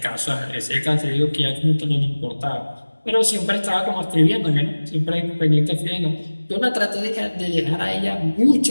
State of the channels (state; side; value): inverted; both; correlation -1.00